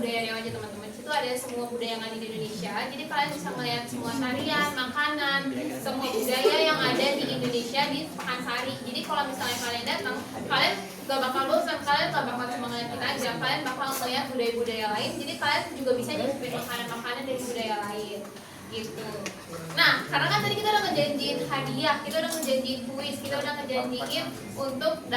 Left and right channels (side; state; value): both; identical; correlation 1.00